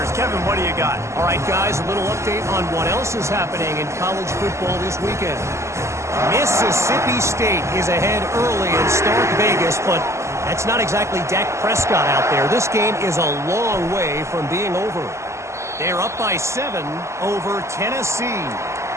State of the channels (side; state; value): left; late; 0.13 ms